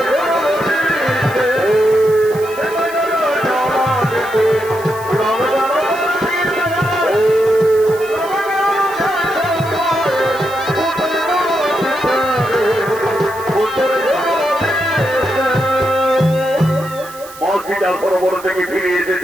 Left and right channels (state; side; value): noise; right; hiss, 18 dB below the sound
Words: সরোবর থেকে ফিরে এসে